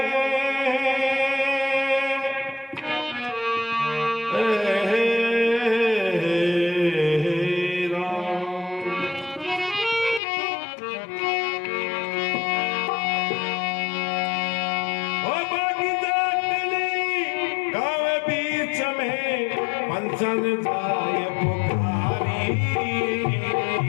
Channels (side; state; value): right; drops out; at 10.2 s